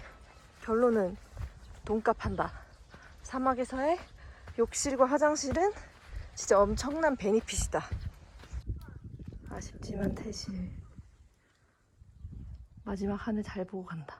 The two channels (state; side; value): identical; both; correlation 1.00